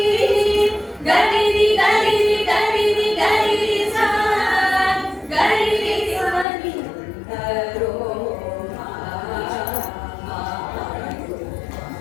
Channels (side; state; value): right; drops out; at 6.5 s